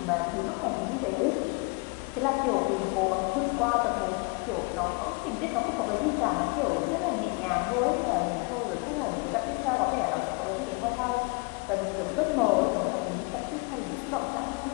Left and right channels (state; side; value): quieter; right; 30.3 dB